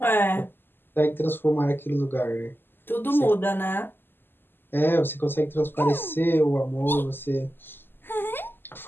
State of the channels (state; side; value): late; right; 0.098 ms